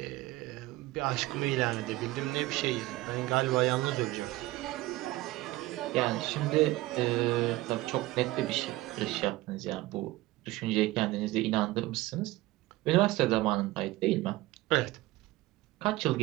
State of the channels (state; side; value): quieter; left; 18.5 dB